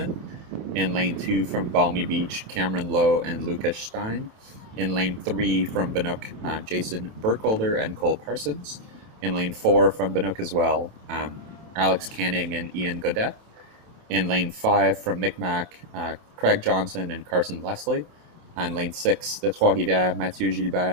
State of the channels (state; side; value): late; left; 27 ms